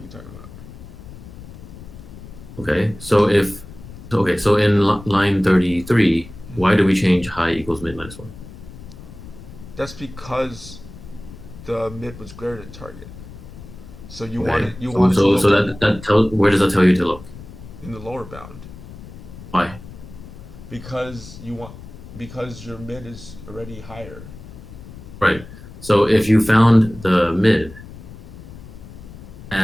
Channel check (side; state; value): left; noise; rumble, 16 dB below the sound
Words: talking about? Okay, so in line 33, why do we change high equals mid minus 1? That's because the mid was greater than target. So you Okay. wanted So, to so, look so that tell where does that tell you to look? in the lower bound Why? because because your mid is already higher. Right. So if you found the mid